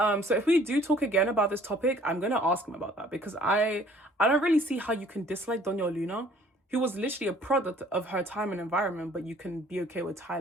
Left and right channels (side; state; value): both; normal; correlation 0.56